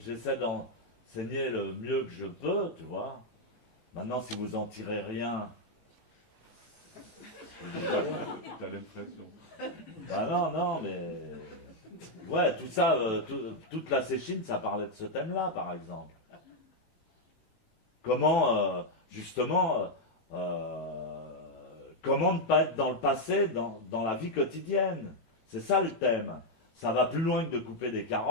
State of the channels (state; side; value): late; right; 18 ms